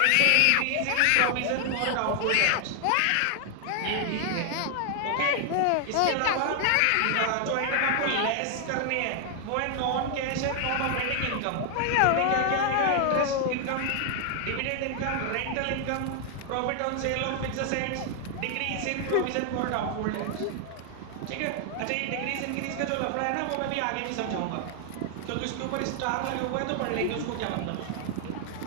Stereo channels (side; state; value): both; different; correlation 0.00